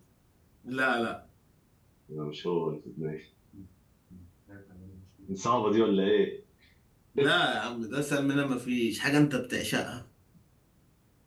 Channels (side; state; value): both; identical; correlation 1.00